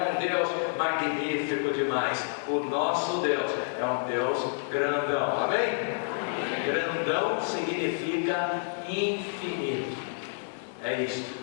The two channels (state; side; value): silent; right; digital silence